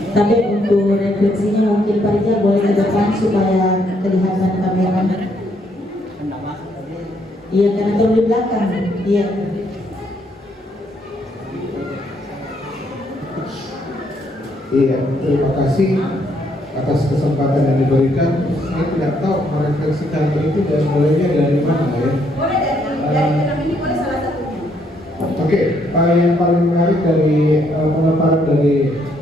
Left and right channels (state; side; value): normal; both; correlation 0.72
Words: Tapi untuk refleksinya mungkin Pak Rijal boleh ke depan supaya kelihatan kamera. Iya, karena terlalu di belakang. Iya. Iya, terima kasih atas kesempatan yang diberikan. Saya tidak tahu merefleksikan itu dan mulainya dari mana ya. Boleh dari film ini, boleh salah satunya. Oke, yang paling menarik dari pemaparan dari